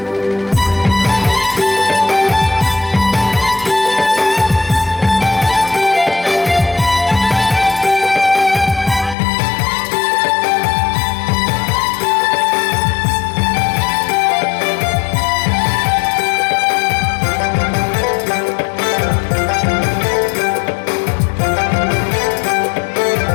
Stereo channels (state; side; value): drops out; right; at 9.2 s